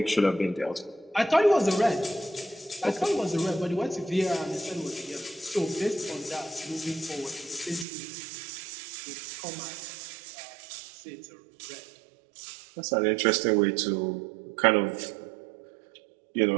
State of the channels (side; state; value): left; drops out; at 7.9 s